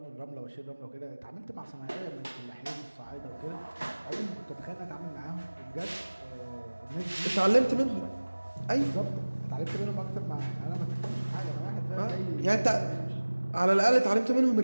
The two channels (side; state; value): both; inverted; correlation -1.00